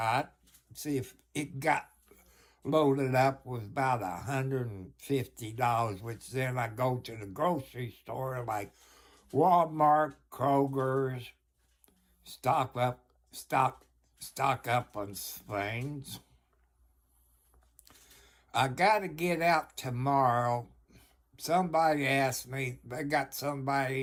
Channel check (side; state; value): both; identical; correlation 1.00